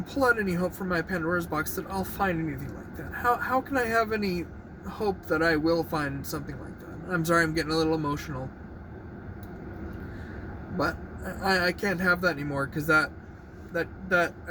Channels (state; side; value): identical; both; correlation 1.00